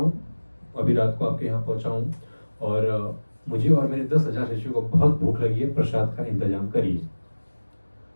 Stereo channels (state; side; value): inverted; both; correlation -1.00